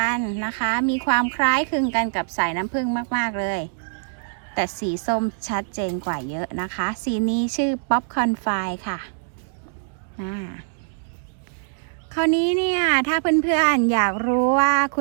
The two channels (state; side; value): silent; left; digital silence